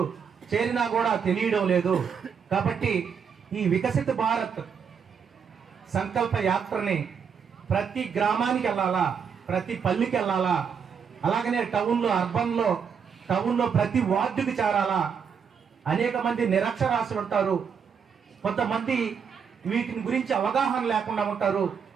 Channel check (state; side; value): quieter; left; 6.8 dB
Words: చేరినా కూడా తెలియడం లేదు. కాబట్టి ఈ వికసిత భారత్ సంకల్ప యాత్రని ప్రతి గ్రామానికి వెళ్ళాలా, ప్రతి పల్లికి వెళ్ళాలా, అలాగనే టౌన్లో ప్రతి వార్డుకి చేరాలా. అనేక మంది నిరక్షరాస్యులు ఉంటారు, కొంతమంది వీటిని గురించి అవగాహన లేకుండా ఉంటారు.